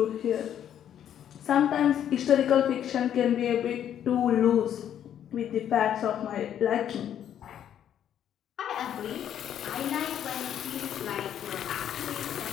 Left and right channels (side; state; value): right; quieter; 10.0 dB